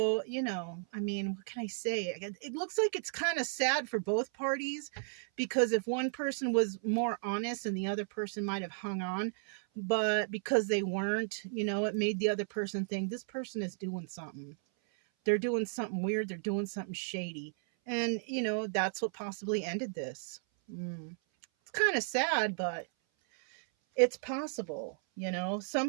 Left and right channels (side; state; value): left; silent; 55 dB below the other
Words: you know, I mean, what can I say? It looks like it's kind of sad for both parties, because if one person was more honest and the other person might have hung on, but because they weren't, you know, it made the other person think this person is doing something. They're doing something weird. They're doing something shady. And, you know, that's what possibly ended this. It's kind of sad, but it's possible, you know.